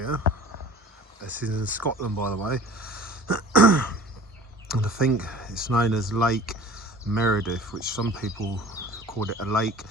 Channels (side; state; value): both; normal; correlation 0.43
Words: This is in Scotland, by the way, and I think it's known as Lake Menteith, which some people call it a lake,